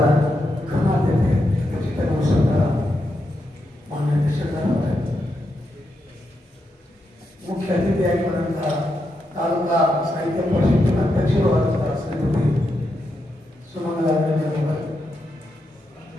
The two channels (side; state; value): both; normal; correlation 0.84